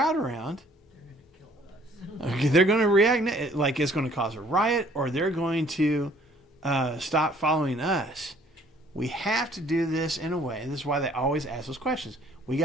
around, they're going to react like it's going to cause a riot, or they're going to stop following us." We have to do this in a way. This is why they always ask those questions. We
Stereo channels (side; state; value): both; normal; correlation 0.59